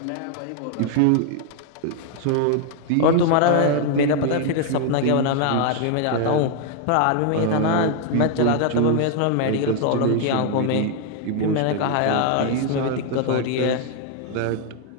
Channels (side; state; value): both; different; correlation 0.00